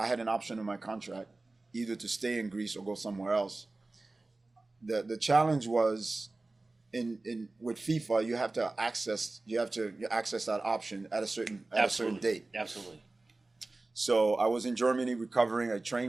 had an option in my contract. either to stay in Greece or go somewhere else. The challenge was in with FIFA, you have to access that option at a certain date. Absolutely. So I was in Germany recovering. I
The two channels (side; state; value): left; quieter; 3.2 dB